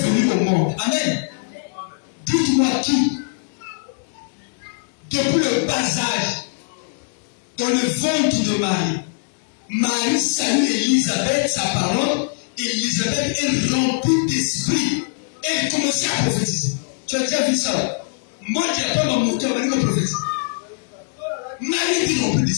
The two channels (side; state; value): right; silent; digital silence